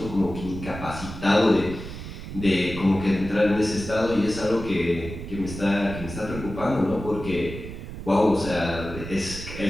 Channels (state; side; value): noise; right; rumble, 10 dB below the sound